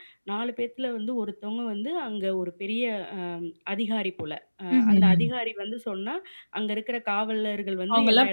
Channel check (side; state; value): both; inverted; correlation -1.00